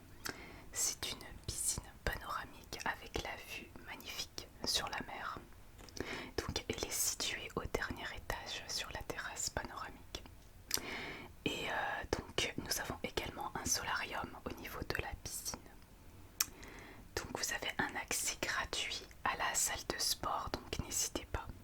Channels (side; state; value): both; identical; correlation 1.00